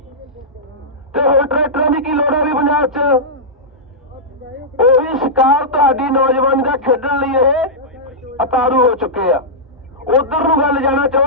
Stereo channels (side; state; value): both; normal; correlation -0.12